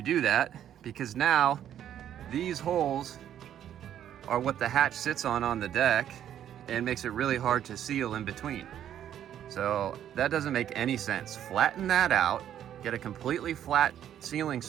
do that? Because now these holes are what the hatch sits on the deck, and makes it really hard to seal in between. So that doesn't make any sense. Flatten that out, get a completely flat sealing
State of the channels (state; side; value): quieter; left; 10.5 dB